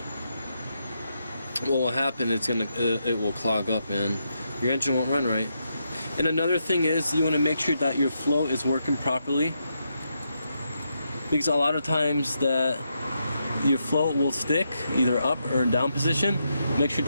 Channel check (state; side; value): inverted; both; correlation -0.82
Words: what will happen, it will clog up and your engine won't run right. And another thing is, you want to make sure that your flow is working properly, because a lot of times that your flow will stick either up or down position. Make sure